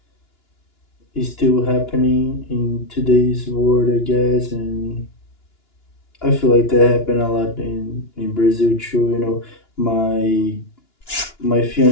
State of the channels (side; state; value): right; late; 2.9 ms